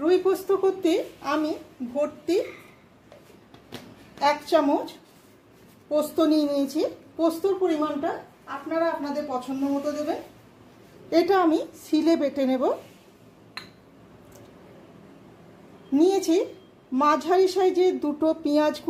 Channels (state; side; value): identical; both; correlation 1.00